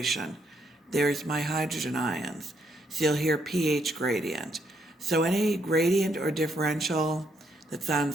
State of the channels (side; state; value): both; normal; correlation 0.74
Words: There's my hydrogen ions. So you'll hear pH gradient. So any gradient or differential that